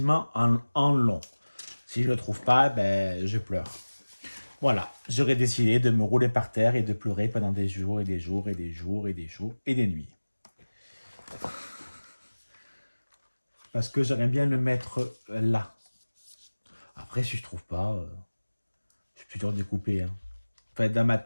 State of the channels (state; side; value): inverted; both; correlation -1.00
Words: en long. Si je ne le trouve pas, ben, je pleure. Voilà, j'aurais décidé de me rouler par terre et de pleurer pendant des jours et des jours et des jours et des jours et des nuits. Parce que j'aimerais bien le mettre là. Après, si je trouve pas, je suis toujours découpé. Hein. En fait, dans ma